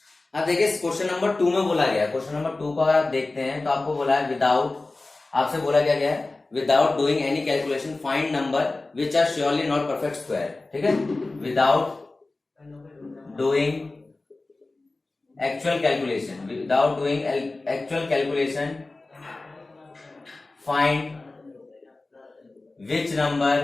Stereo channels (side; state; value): right; quieter; 3.2 dB